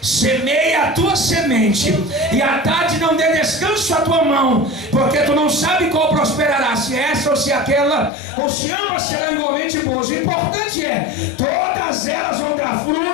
semeia a tua semente, e à tarde não dê descanso à tua mão, porque tu não sabe qual prosperará, se essa ou se aquela, ou se ambas serão igualmente boas. O importante é, todas elas vão dar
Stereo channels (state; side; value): drops out; right; at 8.1 s